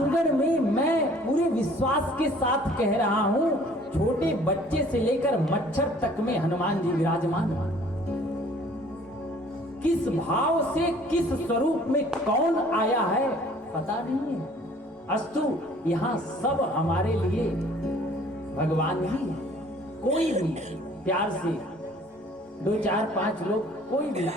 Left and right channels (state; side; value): normal; both; correlation 0.54